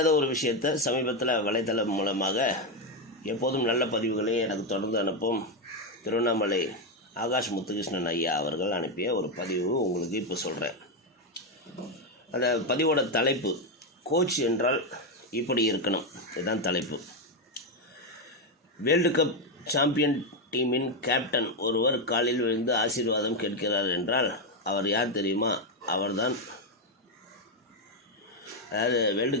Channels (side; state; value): both; normal; correlation 0.06